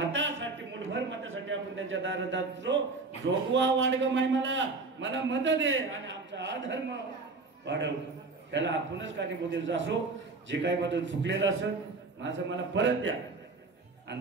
मूठभर मतासाठी आपण त्यांच्या दारात जातो. जोगवा वाढग माय मला मत दे आणि आमचा अधर्म वाढव. त्याला आपणच कारणीभूत असो. जे काही बदल चुकलेलं असेल माझं मला परत द्या.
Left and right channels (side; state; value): left; quieter; 3.8 dB